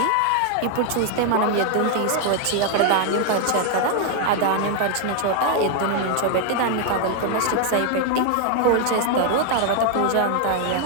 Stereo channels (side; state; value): both; different; correlation 0.00